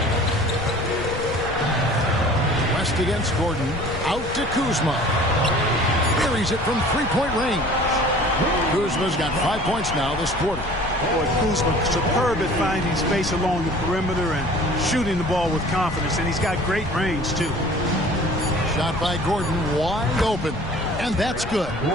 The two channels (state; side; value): noise; left; rumble, 10 dB below the sound